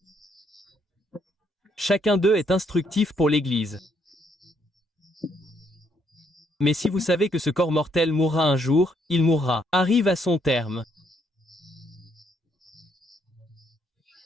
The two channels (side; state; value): both; normal; correlation 0.72